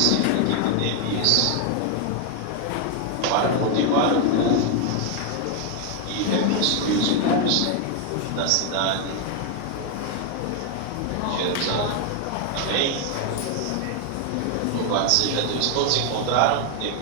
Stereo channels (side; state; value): both; different; correlation 0.01